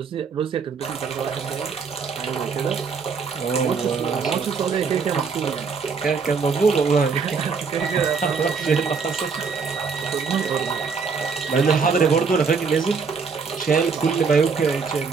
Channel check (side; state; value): left; quieter; 5.3 dB